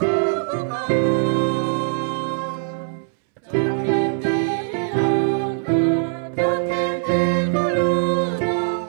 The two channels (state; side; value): silent; left; 65 dB below the other